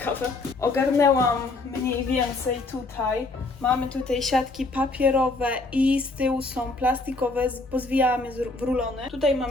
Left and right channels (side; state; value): right; quieter; 3.3 dB